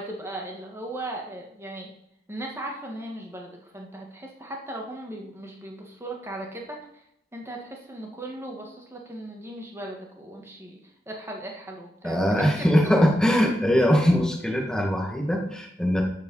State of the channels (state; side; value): normal; both; correlation 0.86